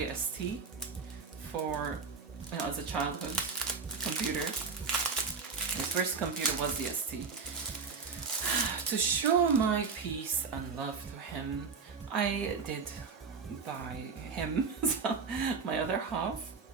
ST for, you know, as a childhood computer. His first computer was the ST. To show my peace and love to him, I did buy him, my other half,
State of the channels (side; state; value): left; quieter; 5.2 dB